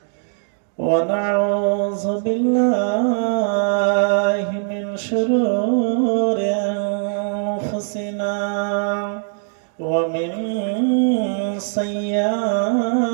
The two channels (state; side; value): silent; left; digital silence